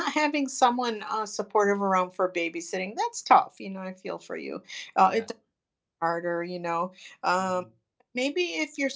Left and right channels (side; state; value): both; identical; correlation 1.00